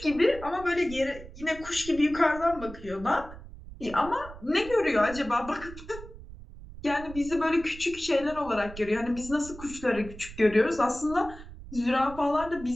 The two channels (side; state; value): right; noise; rumble, 15 dB below the sound